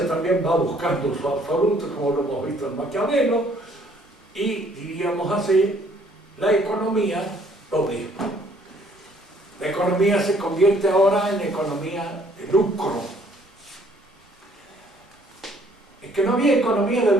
también va buscando su absoluto, como lo hemos visto en Maquiavelo, y diríamos así, la economía lo mismo. La economía se convierte ahora en economía de lucro. Es que no había economía de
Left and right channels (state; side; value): normal; both; correlation 0.62